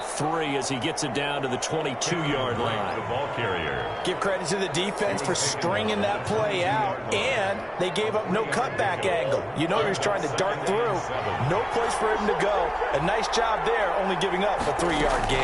3 as he gets it down to the 22-yard line. The ball carrier. Give credit to the defense for stringing that play out, and they gave up no cutback angle. You know he was trying to dart through. No place for him to go. A nice job there, only giving up a 3-yard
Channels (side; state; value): both; identical; correlation 1.00